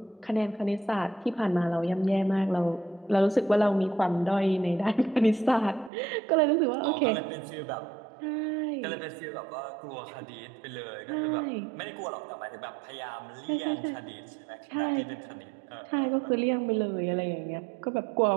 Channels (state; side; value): drops out; left; at 5.9 s